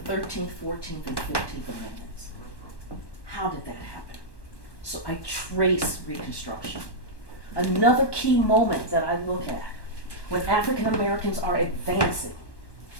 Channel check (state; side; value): late; right; 1.1 ms